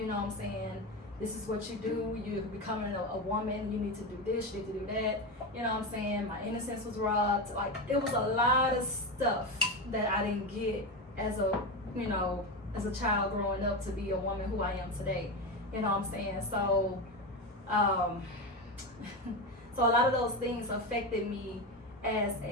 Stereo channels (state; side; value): normal; both; correlation 0.17